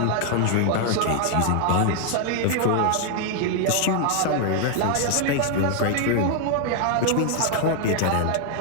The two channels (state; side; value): different; both; correlation 0.00